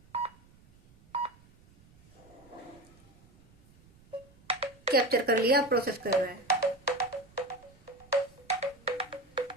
कैप्चर कर लिया, प्रोसेस कर रहा है।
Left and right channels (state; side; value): noise; right; rumble, 27 dB below the sound